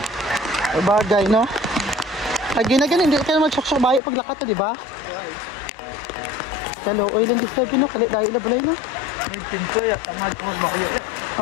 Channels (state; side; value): drops out; right; at 4.0 s